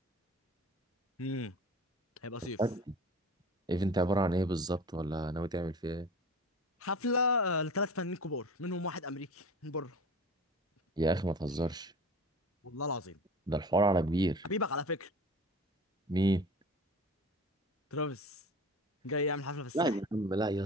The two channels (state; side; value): normal; both; correlation 0.37